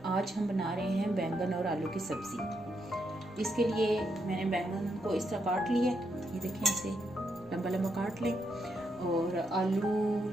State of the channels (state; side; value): noise; right; rumble, 28 dB below the sound